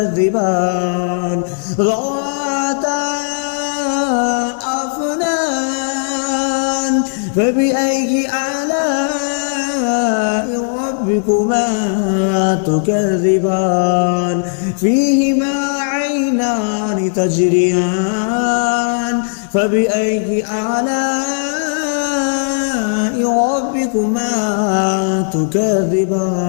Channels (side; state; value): right; silent; digital silence